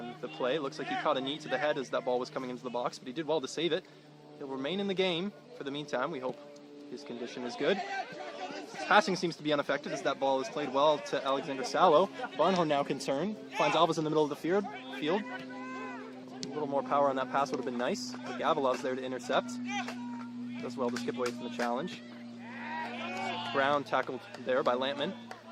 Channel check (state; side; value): identical; both; correlation 1.00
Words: the play. Looks like he caught a knee to the head as that ball was coming into the box, but he did well to save it. He'll remain in the game for the meantime. We hope his condition is good. His passing seems to be unaffected as that ball is played well to Alexander Salo. Barnhorn now concerned. Finds Alves in the middle of the field. A little more power on that pass would have been nice. But Gavilov's there to intercept. Does well to skip away from the challenge. Brown tackled there by Lampman.